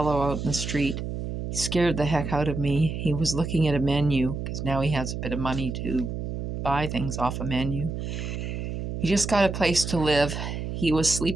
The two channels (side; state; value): right; noise; hum, 5 dB below the sound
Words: out in the street. He scared the heck out of me. He was looking at a menu, because now he has a bit of money to buy things off a menu. He just got a place to live. He was